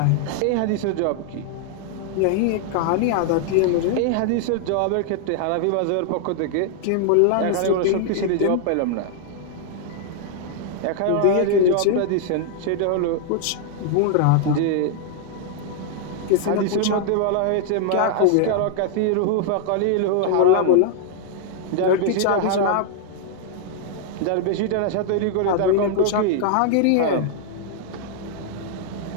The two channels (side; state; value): both; different; correlation -0.01